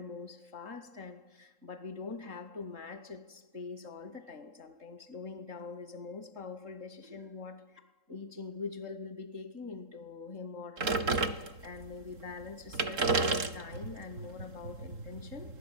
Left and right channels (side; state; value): left; late; 3.7 ms